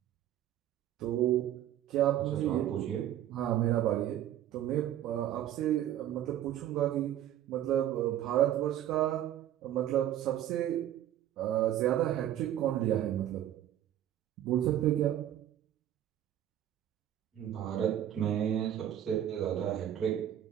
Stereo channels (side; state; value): left; quieter; 11.7 dB